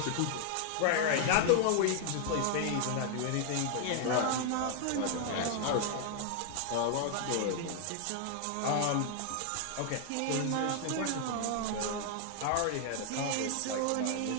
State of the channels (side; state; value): both; different; correlation 0.00